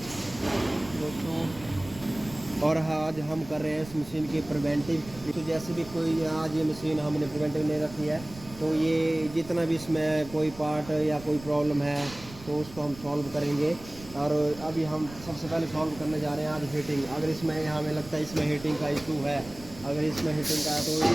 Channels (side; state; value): right; noise; rumble, 17 dB below the sound